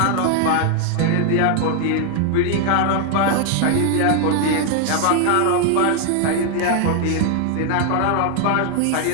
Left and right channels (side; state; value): both; different; correlation 0.00